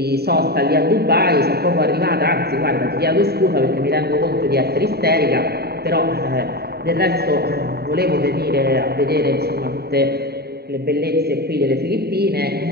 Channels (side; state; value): left; late; 0.46 ms